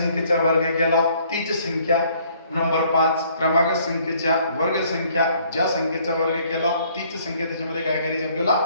वर्ग केला तीच संख्या. नंबर 5 क्रमागत संख्येच्या वर्ग संख्या ज्या संख्येचा वर्ग केला तीच संख्या त्याच्यामध्ये काय करायची आपल्याला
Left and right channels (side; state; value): both; inverted; correlation -0.62